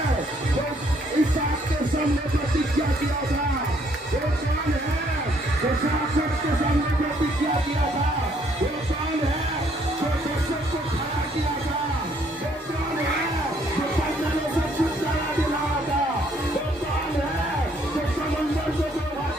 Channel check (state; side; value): normal; both; correlation 0.67